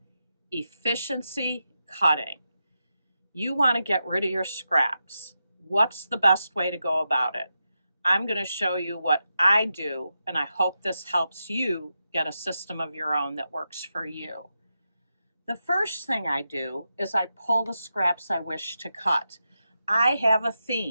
efficiency cutting. You want to get rid of your scraps. What's the best way to go about it? I'm going to show you what I do, and I hope this helps you get a system of your own that works for you. The first thing I do is I pull the scraps I wish to cut. I have a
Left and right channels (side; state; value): both; inverted; correlation -0.88